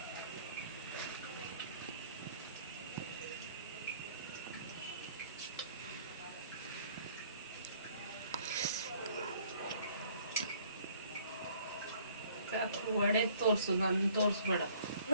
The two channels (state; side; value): inverted; both; correlation -0.59